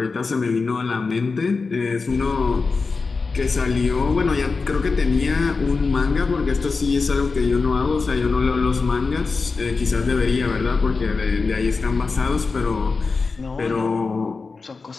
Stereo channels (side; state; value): right; quieter; 4.3 dB